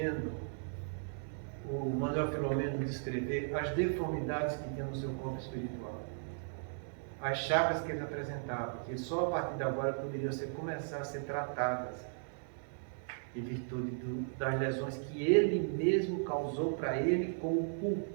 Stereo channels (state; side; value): silent; left; digital silence